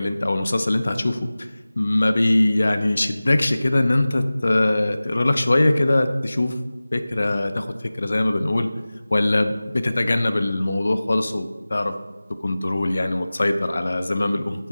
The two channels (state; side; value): inverted; both; correlation -0.98